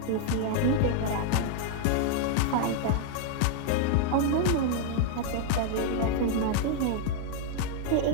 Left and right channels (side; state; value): both; different; correlation 0.00